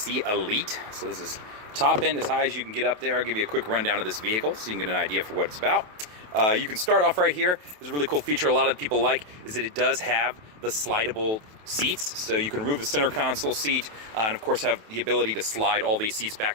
Elite. So this is top end as high as you can get up there. I'll give you a quick rundown of this vehicle so you can get an idea for what it's about. You can start off right here. There's a really cool feature a lot of people like is that it does have the slidable seats. So you can remove the center console seat and of course have the ability to slide all these seats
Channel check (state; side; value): late; left; 28 ms